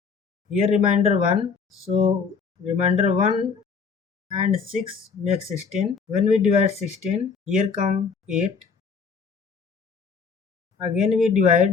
Here remainder 1. So remainder 1 and 6 makes 16. When we divide 16, here come 8. Again we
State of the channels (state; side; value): quieter; right; 5.6 dB